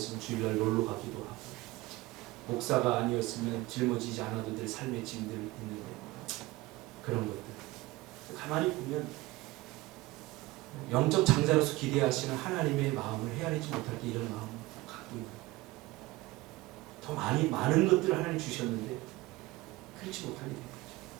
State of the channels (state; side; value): quieter; left; 19.9 dB